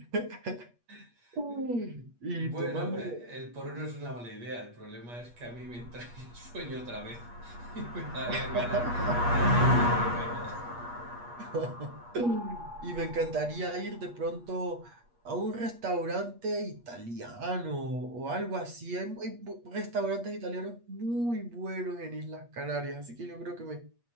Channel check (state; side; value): late; left; 8.4 ms